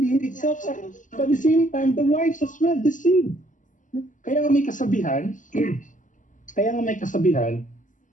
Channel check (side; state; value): right; late; 0.37 ms